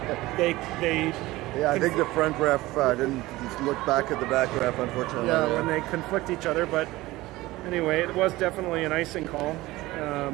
yeah, I think the front ref didn't look back at the back ref, unfortunately. Yeah, when they conflict each other. But anyway, it was definitely an icing call.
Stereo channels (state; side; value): quieter; left; 18.7 dB